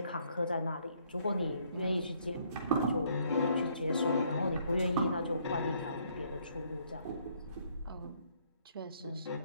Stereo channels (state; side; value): inverted; both; correlation -0.68